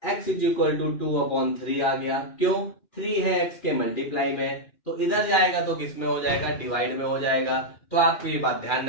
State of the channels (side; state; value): right; late; 2.4 ms